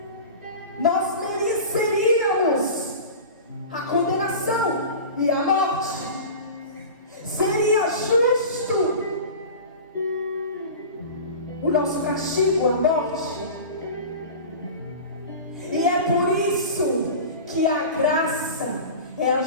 Nós mereceríamos a condenação e a morte. Seria justo o nosso castigo, a morte. E é por isso que a graça é a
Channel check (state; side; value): inverted; both; correlation -0.33